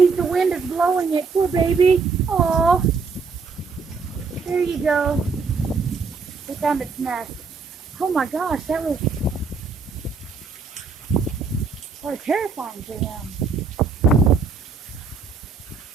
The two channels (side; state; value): left; quieter; 4.9 dB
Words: the wind is blowing it. Poor baby. Oh. There you go. It found its nest. Oh my gosh, that was so terrifying to him.